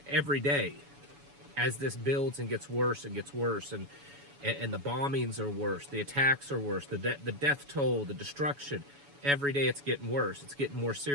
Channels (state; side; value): late; left; 7.0 ms